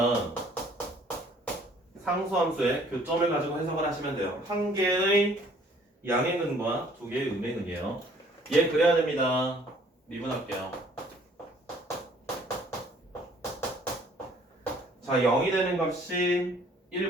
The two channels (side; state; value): both; normal; correlation 0.58